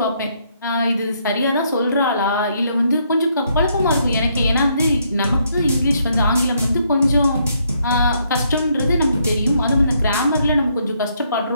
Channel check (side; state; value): both; inverted; correlation -0.73